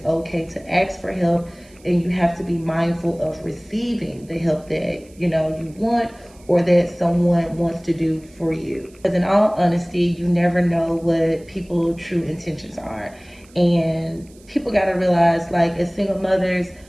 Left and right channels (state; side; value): noise; right; hiss, 28 dB below the sound